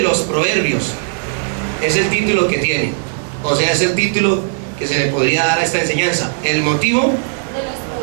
los proverbios, es el título que tiene, o sea, es el título que se le podría dar a esta enseñanza, el motivo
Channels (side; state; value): left; silent; digital silence